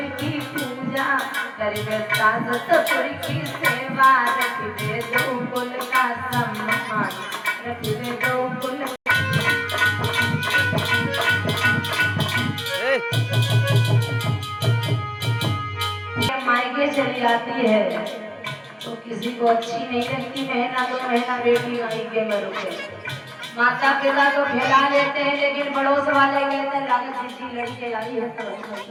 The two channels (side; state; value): both; identical; correlation 1.00